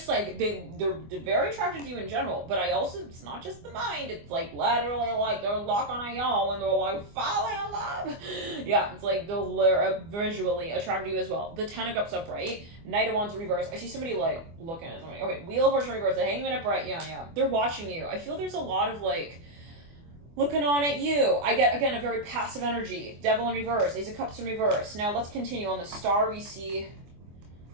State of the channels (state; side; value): late; left; 24 ms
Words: like they're very attracted to you in general, but it's not just the mind. It's like literally like they're locking on y'all and they're like falling in love. Yeah, it's like they're visually attracted to you as well. The Ten of Cups upright, Knight of Wands in reverse. I see somebody like looking at somebody. Okay, Wheel of Fortune reverse, the Hangman upright. Yeah. They're watching you. I feel there's a lot of like looking on at you. I get, again, a very passive energy. Devil in reverse, Ace of Cups in reverse. Now let's continue. On the Star, we see